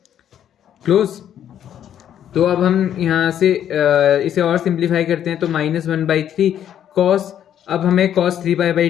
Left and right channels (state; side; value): quieter; right; 10.1 dB